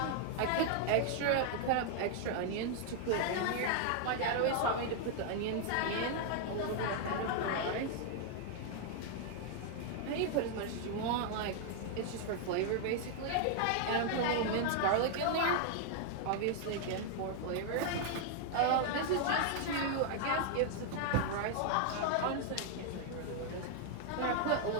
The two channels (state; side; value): different; both; correlation 0.00